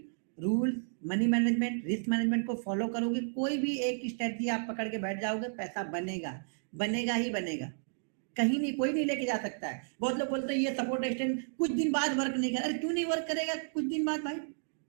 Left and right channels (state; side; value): silent; left; digital silence